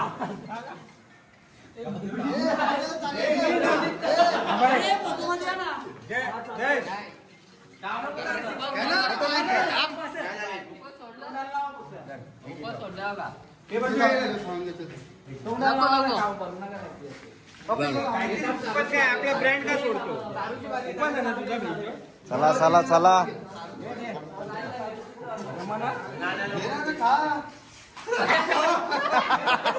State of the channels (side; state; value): both; identical; correlation 1.00